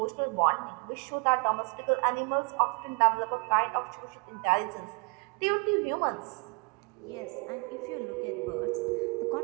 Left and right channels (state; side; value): quieter; left; 32.2 dB